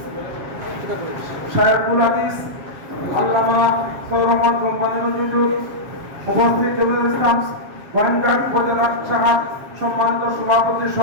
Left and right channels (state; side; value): late; left; 7.4 ms